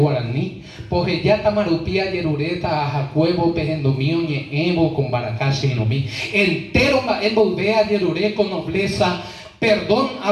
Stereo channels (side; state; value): both; identical; correlation 1.00